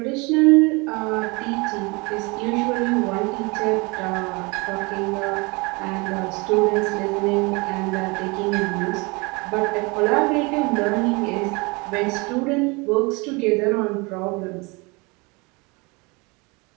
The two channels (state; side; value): quieter; left; 27.2 dB